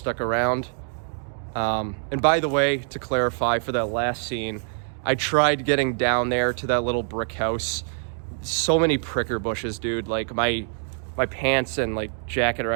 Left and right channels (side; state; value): left; silent; 61 dB below the other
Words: around. And by the way, to clarify for that last scene, I tried getting down there to that little brick house. So many pricker bushes, dude. Like my pants and like jacket are